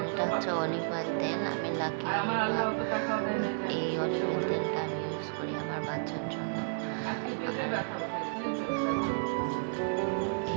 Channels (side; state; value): left; silent; digital silence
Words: এটা হচ্ছে অলিভ অয়েল তেল। আমি লাকি এই অলিভ অয়েল তেলটা আমি ইউজ করি আমার বাচ্চার জন্য।